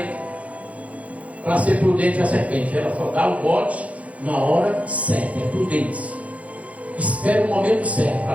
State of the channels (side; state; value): left; late; 0.067 ms